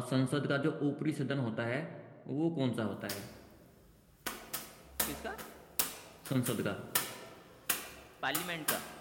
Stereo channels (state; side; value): identical; both; correlation 1.00